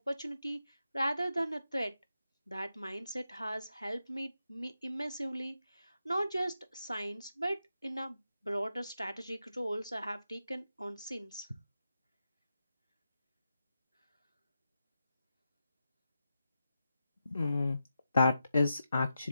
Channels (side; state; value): both; inverted; correlation -0.88